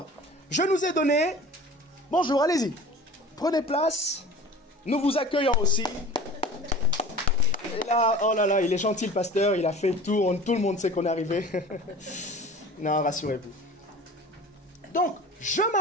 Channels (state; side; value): normal; both; correlation 0.40